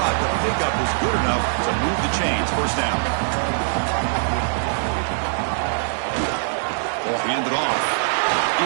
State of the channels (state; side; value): silent; left; 57 dB below the other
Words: the pickup is good enough to move the chains. First down. Ball handed off.